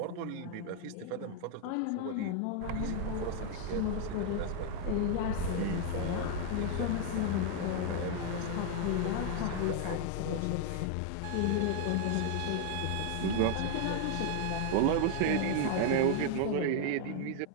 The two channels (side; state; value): both; different; correlation 0.00